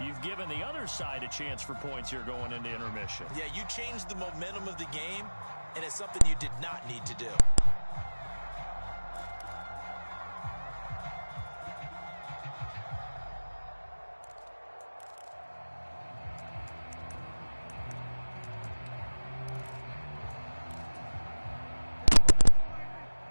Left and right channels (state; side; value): inverted; both; correlation -1.00